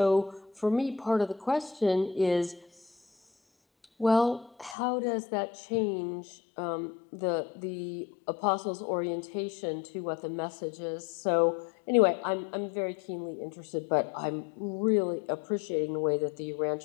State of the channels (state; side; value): drops out; right; at 4.8 s